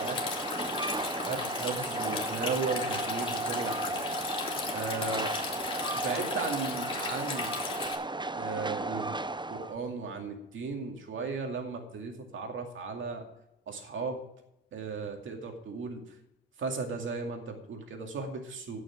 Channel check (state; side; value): normal; both; correlation 0.23